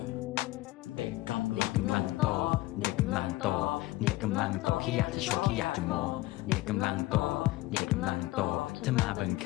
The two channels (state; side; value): quieter; right; 18.4 dB